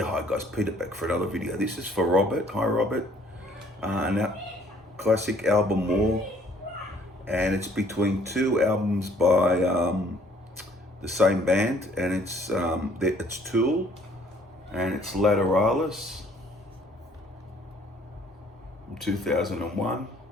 hi guys, Peter back for another video. This is for Robert. Hi Robert. Now, classic album More, and it's between two albums by the same band, and it's Tool, and it's Lateralus from 2001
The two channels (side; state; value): both; normal; correlation 0.60